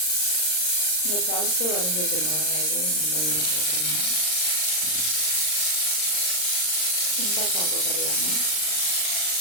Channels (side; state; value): right; late; 39 ms